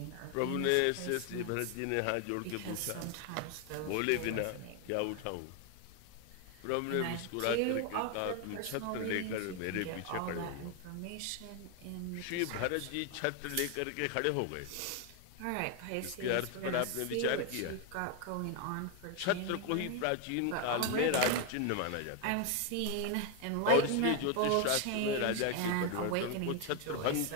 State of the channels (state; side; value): different; both; correlation 0.01